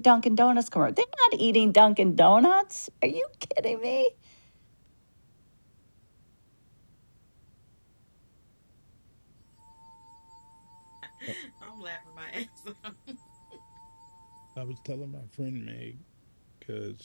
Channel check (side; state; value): both; inverted; correlation -1.00